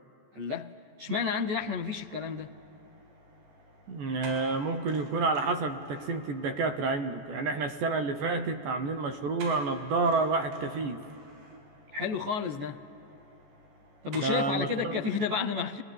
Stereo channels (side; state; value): left; late; 14 ms